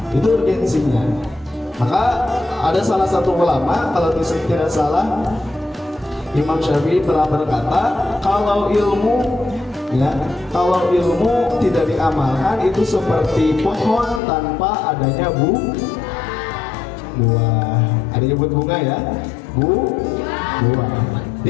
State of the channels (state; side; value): drops out; right; at 14.2 s